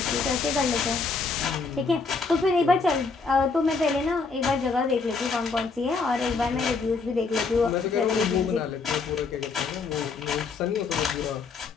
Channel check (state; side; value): quieter; right; 4.5 dB